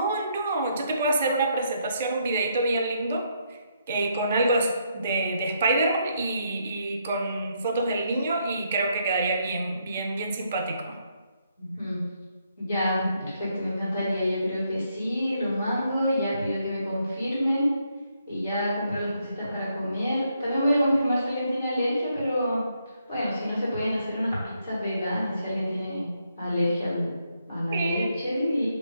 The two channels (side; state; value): both; inverted; correlation -0.76